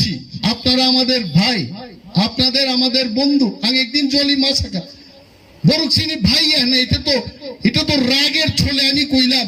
আপনারা আমাদের ভাই আপনাদের আমাদের বন্ধু আমি একদিন জলি মাছাকা বড় চিনি ভাই না এটা তো রাগের ছলে আমি কইলাম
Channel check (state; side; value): identical; both; correlation 1.00